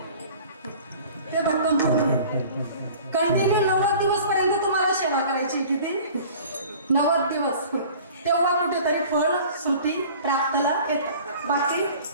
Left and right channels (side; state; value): both; inverted; correlation -0.45